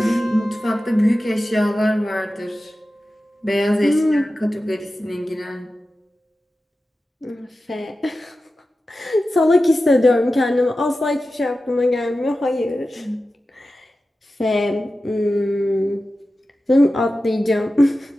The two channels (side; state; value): both; normal; correlation 0.94